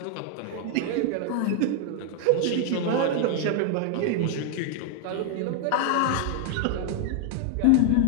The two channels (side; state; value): both; different; correlation 0.00